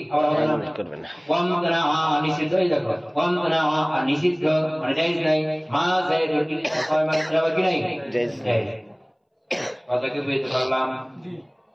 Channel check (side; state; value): both; identical; correlation 1.00